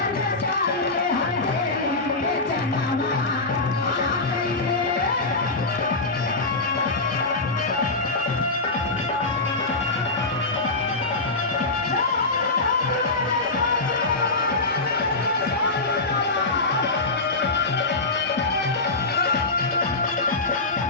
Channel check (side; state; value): right; quieter; 3.3 dB